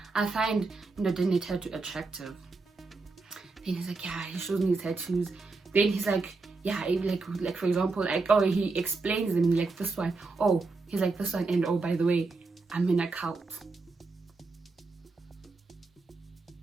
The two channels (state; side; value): quieter; left; 3.8 dB